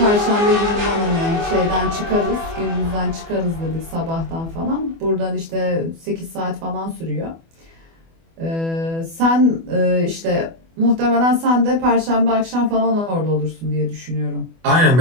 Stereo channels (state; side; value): late; left; 24 ms